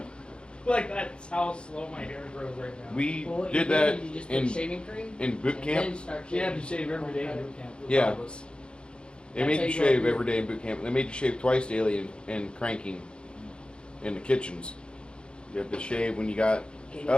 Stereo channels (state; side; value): late; right; 0.054 ms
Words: Like that's how slow my hair grows right now. We Well, what did you that You just put in shaving cream boot and camp. then start She had to shaving. shave every day in boot camp. Yeah. Regardless. They That's made how you you shave go. every day in boot camp. They made you shave twice daily in cranking in the kitchens. You had to shave when you got